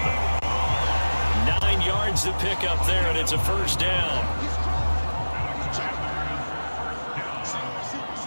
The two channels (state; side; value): inverted; both; correlation -1.00